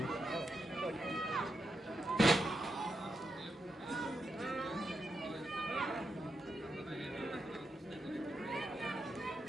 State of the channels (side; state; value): both; normal; correlation 0.85